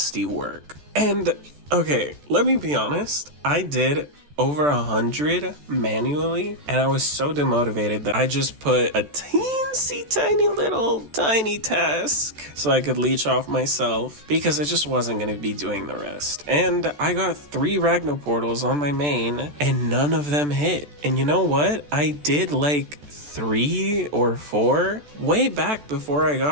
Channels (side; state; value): left; late; 14 ms